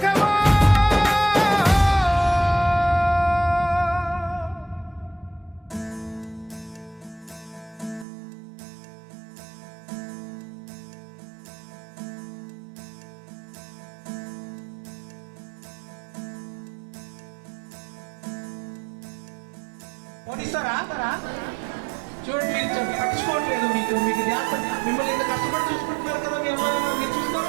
చూడండి మీరు పట్టించుకోవట్లేదు మీకు మిమ్మల్ని ఇంత కష్టపడి చూసుకుంటున్నారు కదా మీ అమ్మ మీరు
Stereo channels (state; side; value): drops out; left; at 8.1 s